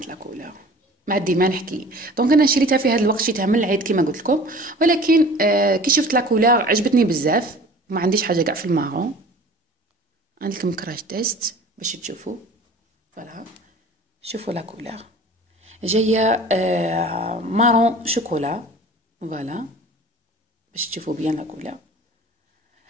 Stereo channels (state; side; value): normal; both; correlation 0.44